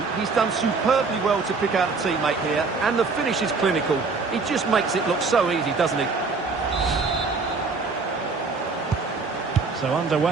He's done superbly well to pick out a teammate here, and the finish is clinical. He just makes it look so easy, doesn't he? So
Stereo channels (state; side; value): quieter; left; 4.3 dB